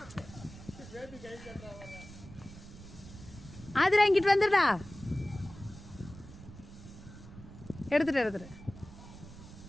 ஆதிரா இங்கிட்டு வந்துடா. எடுத்துட்டு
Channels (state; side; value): noise; right; rumble, 16 dB below the sound